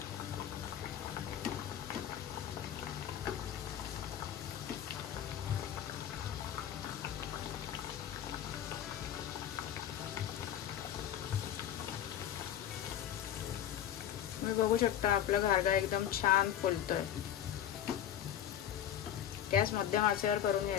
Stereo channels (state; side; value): quieter; right; 10.4 dB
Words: तुम्ही बघू शकता आपला घारगा एकदम छान फुलतोय. गॅस मध्यम आचेवर करून